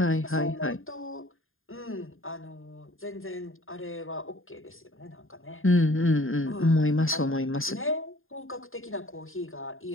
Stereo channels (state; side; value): late; right; 0.60 ms